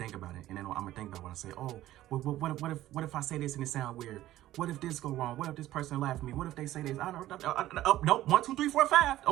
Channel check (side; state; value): left; quieter; 14.5 dB